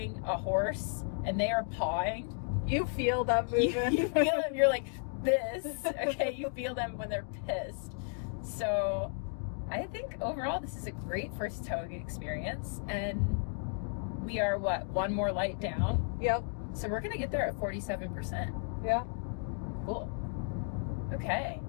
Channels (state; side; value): silent; right; 55 dB below the other